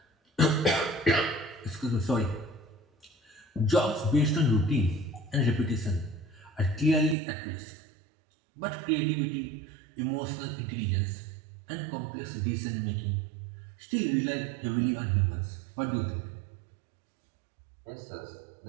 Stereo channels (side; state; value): left; drops out; at 7.2 s